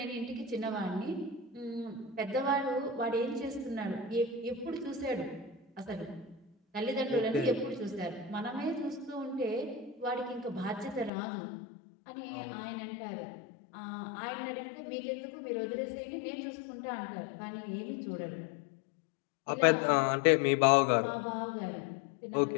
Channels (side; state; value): right; drops out; at 11.1 s